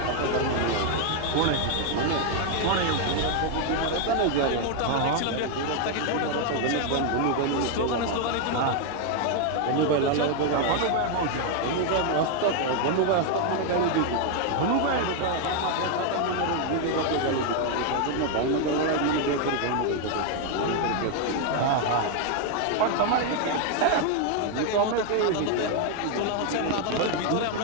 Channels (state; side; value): different; both; correlation 0.01